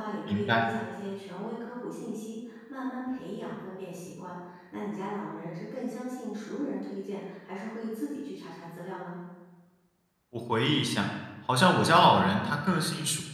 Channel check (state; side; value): identical; both; correlation 1.00